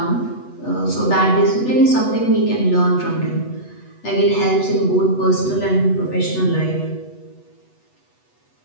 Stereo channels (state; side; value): late; right; 8.1 ms